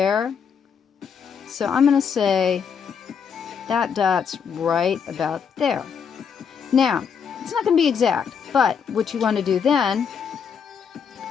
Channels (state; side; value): quieter; right; 6.9 dB